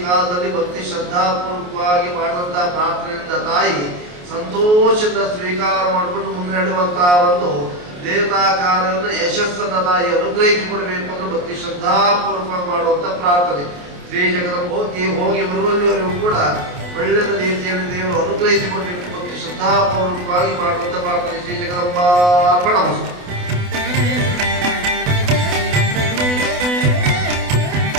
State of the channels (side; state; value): left; late; 28 ms